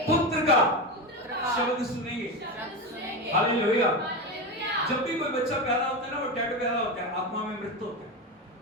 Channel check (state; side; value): normal; both; correlation 0.18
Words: पुत्र का शब्द सुनेंगे। हालेलुया। जब भी कोई बच्चा पैदा होता है ना, वो डेड पैदा होता है, आत्मा में मृत होता है।